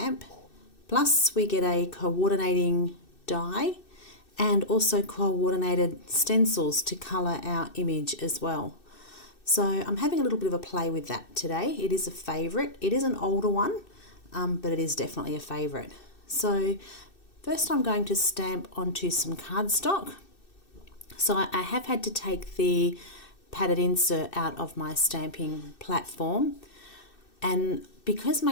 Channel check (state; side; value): late; right; 2.6 ms